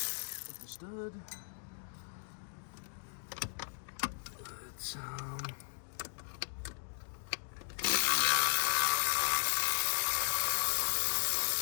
With the stud. Let's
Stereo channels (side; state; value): right; silent; digital silence